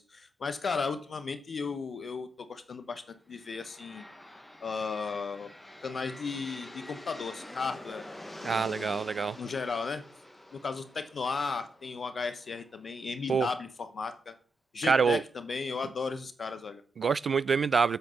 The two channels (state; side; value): normal; both; correlation 0.82